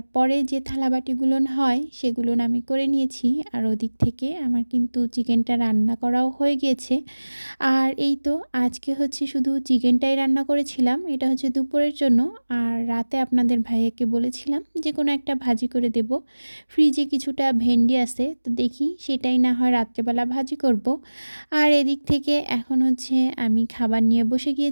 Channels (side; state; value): both; inverted; correlation -1.00